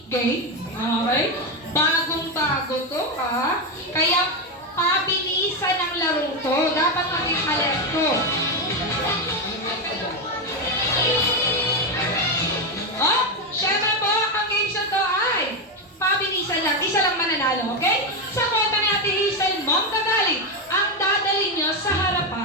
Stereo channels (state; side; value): normal; both; correlation 0.09